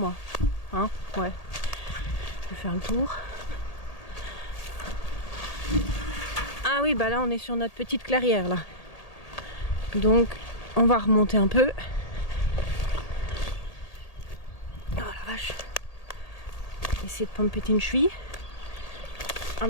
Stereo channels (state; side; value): late; right; 1.8 ms